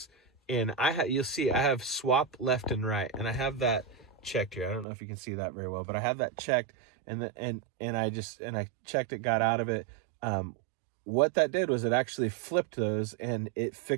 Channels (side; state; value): left; drops out; at 4.9 s